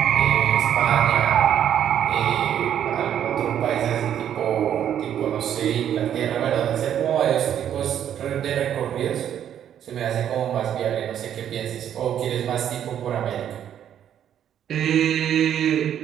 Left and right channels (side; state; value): left; quieter; 9.9 dB